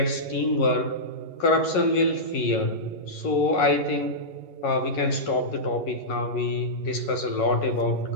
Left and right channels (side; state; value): right; late; 11 ms